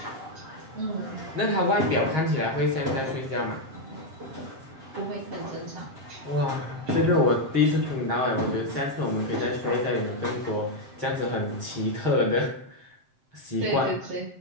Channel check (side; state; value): left; late; 7.6 ms